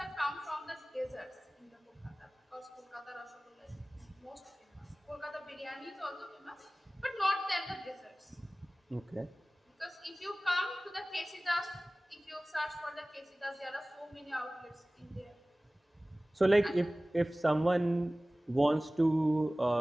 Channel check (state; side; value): normal; both; correlation 0.98